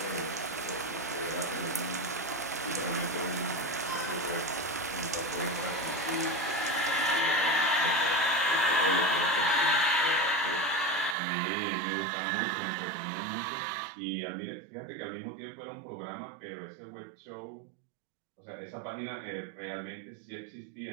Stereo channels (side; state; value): left; drops out; at 11.2 s